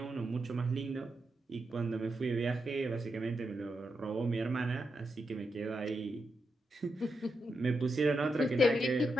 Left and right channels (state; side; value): normal; both; correlation 0.85